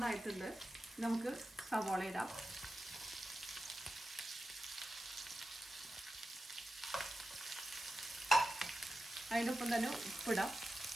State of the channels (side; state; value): both; normal; correlation 0.91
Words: ആയിട്ടുണ്ട്. നമുക്ക് സവാള ഇടാം. അതിനൊപ്പം തന്നെ ഉപ്പിടാം.